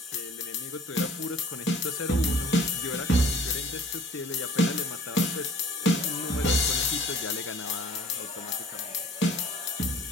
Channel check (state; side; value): normal; both; correlation 0.52